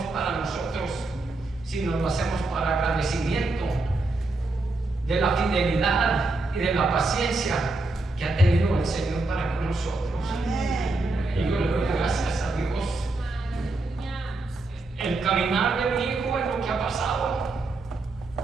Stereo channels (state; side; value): quieter; left; 3.1 dB